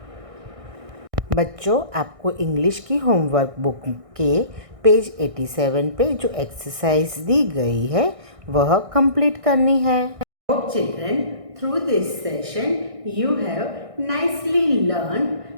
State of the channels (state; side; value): late; left; 1.6 ms